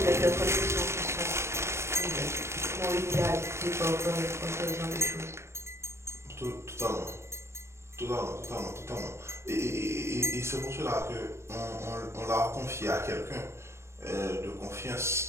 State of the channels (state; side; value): late; left; 0.13 ms